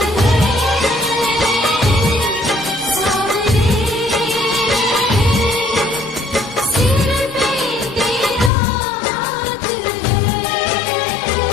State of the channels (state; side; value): drops out; right; at 8.5 s